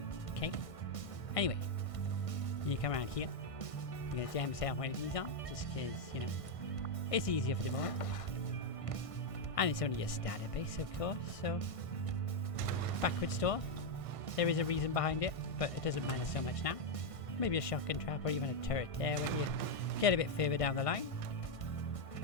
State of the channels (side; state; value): right; late; 1.6 ms